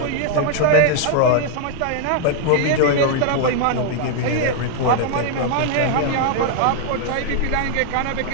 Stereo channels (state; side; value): different; both; correlation 0.00